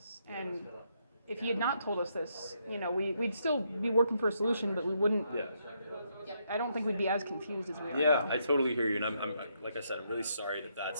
And if he had not told us this, we'd still be working for a solution, but we wouldn't. Yeah. I don't think we'd be as confused as we are. Yeah, now. I totally hear you, and I'm like I said, I'm really sorry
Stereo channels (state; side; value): inverted; both; correlation -0.76